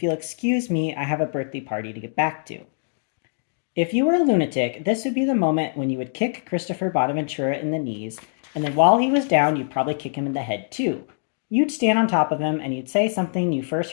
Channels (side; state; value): right; silent; digital silence